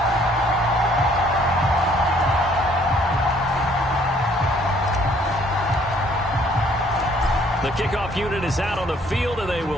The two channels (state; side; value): normal; both; correlation 0.62